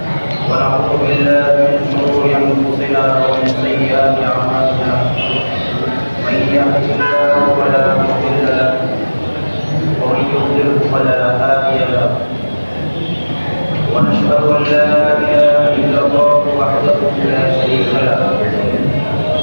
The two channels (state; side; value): inverted; both; correlation -1.00